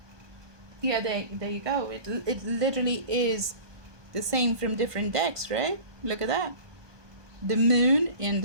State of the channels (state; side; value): late; left; 1.2 ms